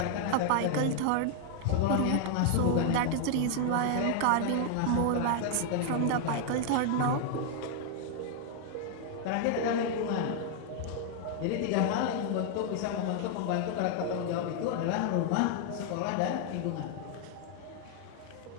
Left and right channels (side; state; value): both; different; correlation 0.00